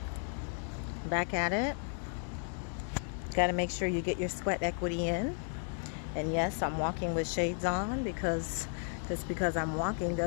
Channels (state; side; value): silent; right; 55 dB below the other